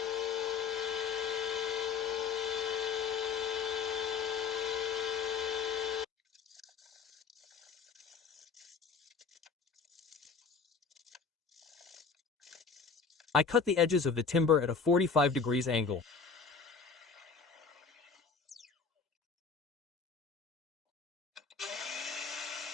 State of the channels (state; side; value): quieter; right; 5.4 dB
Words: I cut the edges of the timber at a 45 degrees angle.